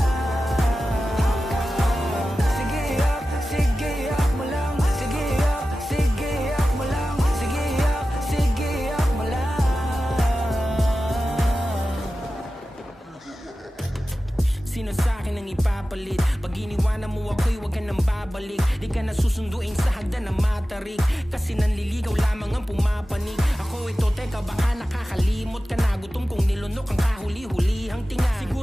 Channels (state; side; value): normal; both; correlation 0.94